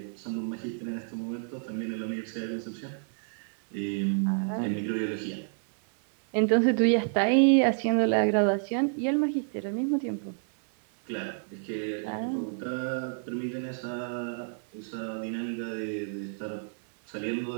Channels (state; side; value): silent; left; 58 dB below the other